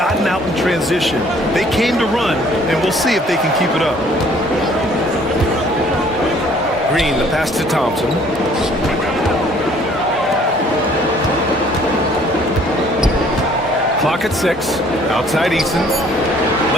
out in transition. They came to run, and we'll see if they can keep it up. Green, the pass to Thompson. Clock at 6. Outside Eason.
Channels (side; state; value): both; normal; correlation 0.58